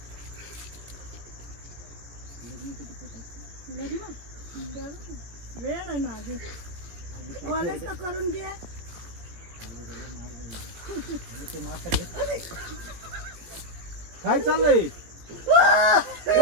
लग्न वेळ आहे ना आधी, कॉलेज तर करून घे. काय चाललंय?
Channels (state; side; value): late; left; 18 ms